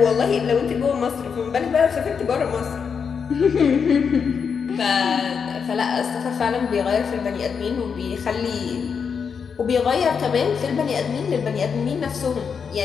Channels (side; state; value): right; quieter; 6.3 dB